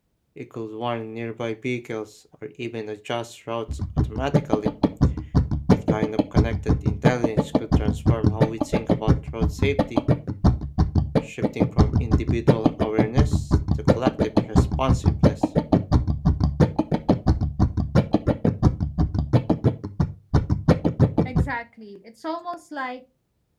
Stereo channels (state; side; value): identical; both; correlation 1.00